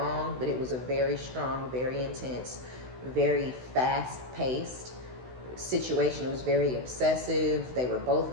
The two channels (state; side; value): late; left; 16 ms